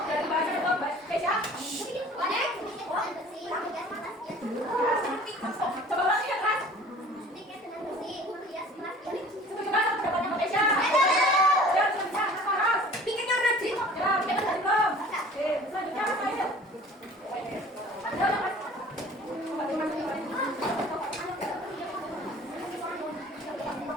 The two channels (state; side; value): normal; both; correlation 0.47